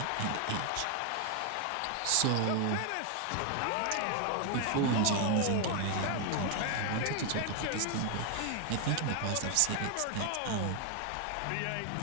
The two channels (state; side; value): different; both; correlation 0.00